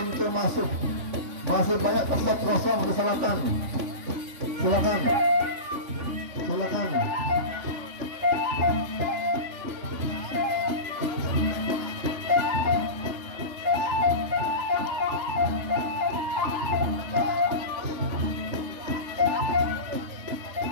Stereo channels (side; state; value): left; late; 3.5 ms